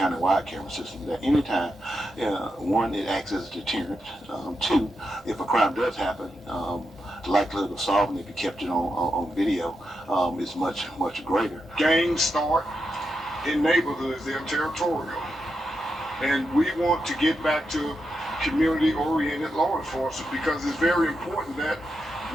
camera system that anytime, one, it acts as a deterrent. 2, if a crime does happen, the likelihood of solving it if you kept it on video is much, much greater. Gangs start in neighborhoods, they're territorial. And we want to get back to community-oriented law enforcement because it's very important that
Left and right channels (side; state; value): both; normal; correlation 0.85